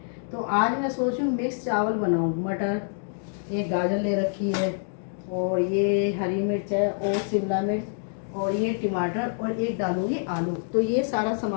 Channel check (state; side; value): silent; right; digital silence